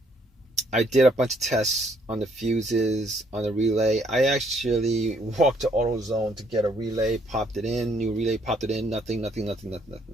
I did a bunch of tests on the fuses, on the relay. I actually walked to AutoZone to get a relay, popped it in, new relay, popped it in, nothing.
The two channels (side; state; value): both; normal; correlation 0.67